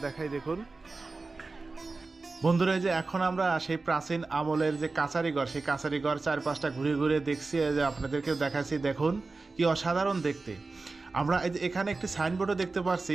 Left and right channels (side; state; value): left; quieter; 3.7 dB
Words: দেখাই, দেখুন বন্ধুরা। এই যে এখন আমরা সেই প্রাচীন আমলের যে কাছারিঘর, সেই কাছারিঘর চারপাশটা ঘুরে ঘুরে দেখছি, যে আপনাদেরকেও দেখাচ্ছি। দেখুন কি অসাধারণ দেখতে। আমরা এই যে এখানে একটি সাইনবোর্ডও দেখতে পাচ্ছি।